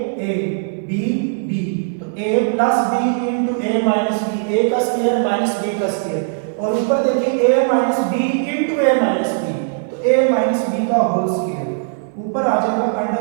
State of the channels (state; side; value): silent; left; 58 dB below the other